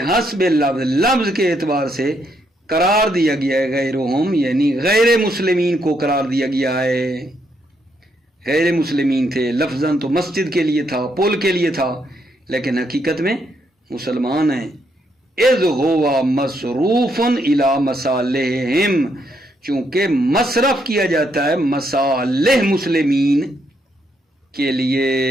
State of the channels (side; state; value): both; normal; correlation 0.76